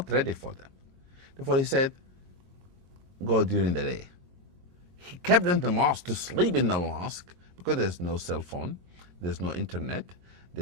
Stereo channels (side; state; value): left; late; 22 ms